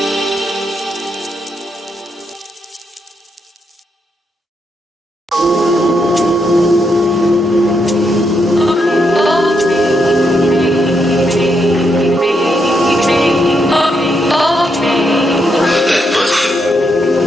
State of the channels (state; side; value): normal; both; correlation 0.80